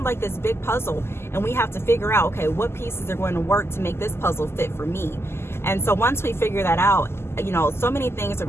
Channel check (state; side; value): late; right; 0.12 ms